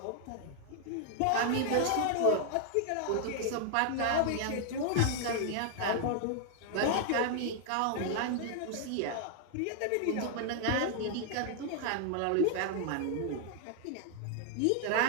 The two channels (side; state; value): both; different; correlation 0.00